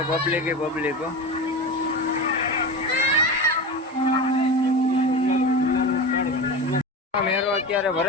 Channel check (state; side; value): normal; both; correlation 0.26